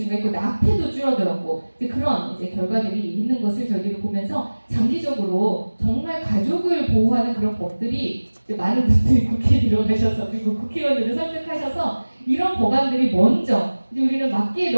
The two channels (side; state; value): both; inverted; correlation -1.00